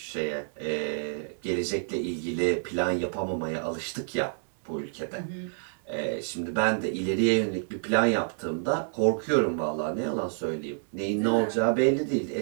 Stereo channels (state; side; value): silent; left; digital silence